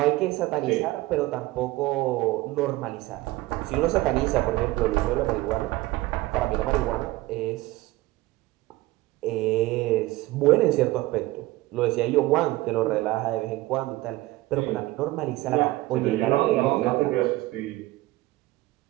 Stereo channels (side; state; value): left; quieter; 18.7 dB